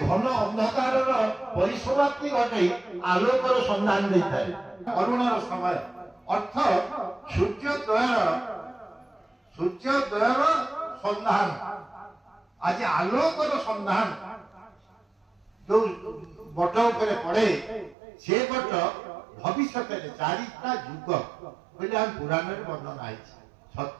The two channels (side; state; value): left; drops out; at 17.9 s